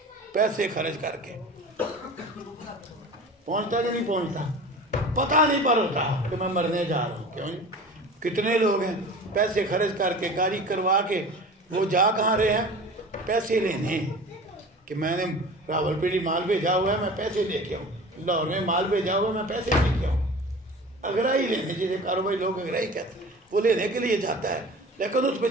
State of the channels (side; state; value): both; normal; correlation 0.38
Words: پیسے خرچ کر کے پہنچتا کہ نہیں پہنچتا، پتہ نہیں پر ہوتا کہ میں مرنے جا رہا ہوں، کیوں؟ کتنے لوگ ہیں پیسے خرچ کر کے گاڑی کروا کے وہ جا کہاں رہے ہیں، پیسے لینے، کہ میں نے راول پنڈی مال بھیجا ہوا ہے میں پیسے لے کے آؤں، لاہور میں مال بھیجا ہوا ہے میں پیسے لے کے آؤں، اگرائی لینے، جسے کاروباری لوگ اگرائی کہتے ہیں، وہ لینے کے لیے جاتا ہے، لیکن اس